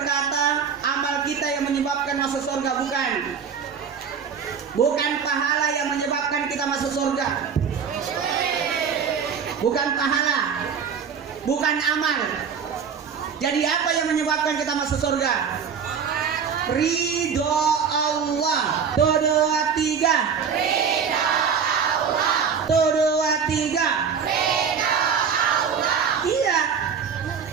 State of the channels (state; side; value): quieter; left; 6.7 dB